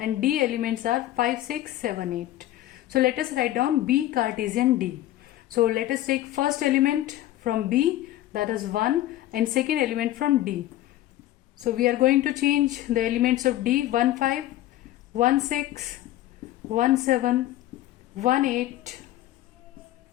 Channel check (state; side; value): quieter; right; 14.4 dB